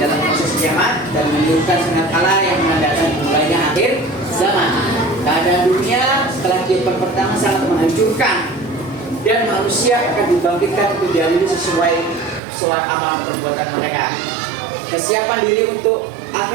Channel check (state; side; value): drops out; left; at 12.4 s